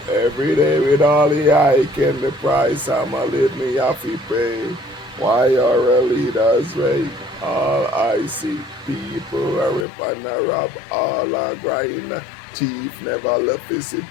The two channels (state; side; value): drops out; right; at 9.9 s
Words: every day with all the I can the price. I'm a live me have to pay. Why are leaders rape? All I see people are rip and a rob. All are grind. Thief never left his